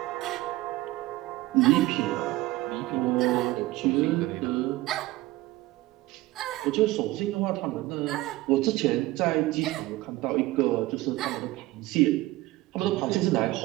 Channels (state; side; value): quieter; left; 18.3 dB